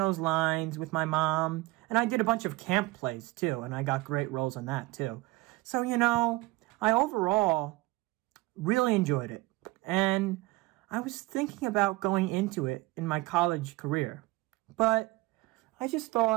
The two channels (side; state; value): left; quieter; 20.5 dB